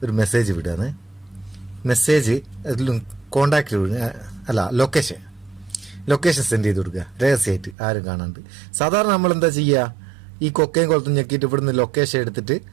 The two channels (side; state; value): left; drops out; at 7.8 s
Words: ഒരു മെസ്സേജ് വിടുകയാണ്. മെസ്സേജ് കോണ്ടാക്റ്റ് അല്ല ലൊക്കേഷൻ സെൻഡ് ചെയ്ത് കൊടുക്കുക രഹസ്യമായിട്ട്, ആരും കാണാണ്ട്. സാധാരണ നമ്മൾ എന്താ ചെയ്യുക, ഈ കൊക്കയും കൊളത്തും ഞെക്കിയിട്ട് ഇവിടുന്ന് ലൊക്കേഷൻ എടുത്തിട്ട്